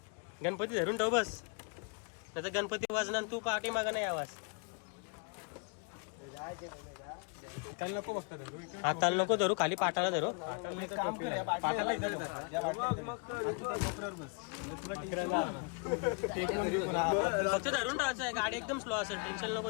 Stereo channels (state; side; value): quieter; right; 36.0 dB